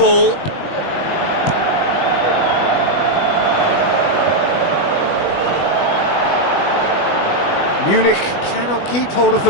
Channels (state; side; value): late; right; 20 ms